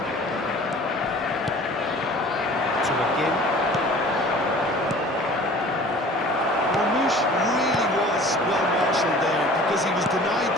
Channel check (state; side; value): normal; both; correlation 0.46